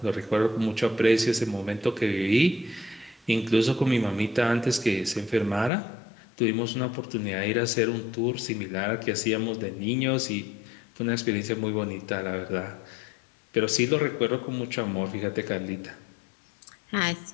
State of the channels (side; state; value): right; drops out; at 5.7 s